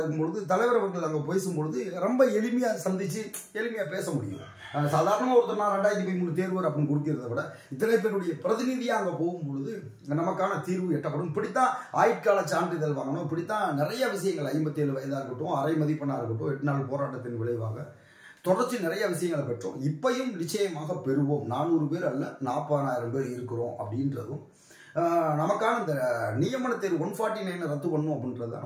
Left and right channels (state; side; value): identical; both; correlation 1.00